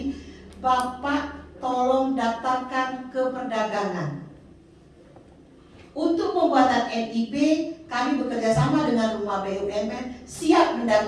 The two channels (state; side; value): identical; both; correlation 1.00